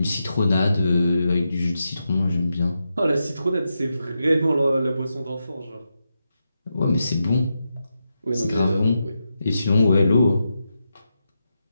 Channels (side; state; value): both; inverted; correlation -0.87